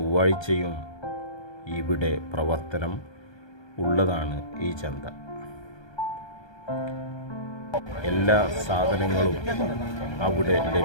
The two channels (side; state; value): right; late; 1.2 ms